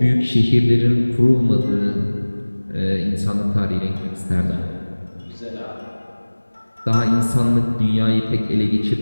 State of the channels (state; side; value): inverted; both; correlation -1.00